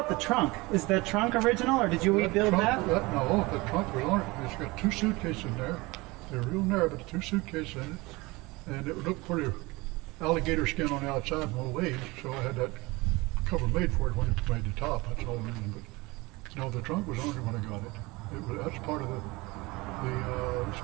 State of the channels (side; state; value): left; quieter; 23.0 dB